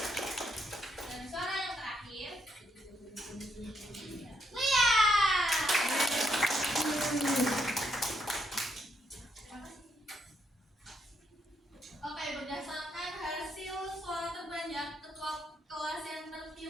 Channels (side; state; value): both; normal; correlation 0.76